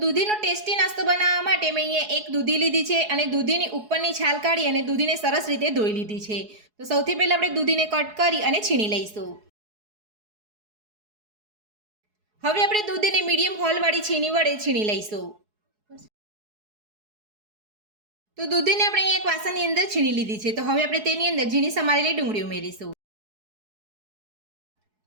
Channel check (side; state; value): left; late; 4.7 ms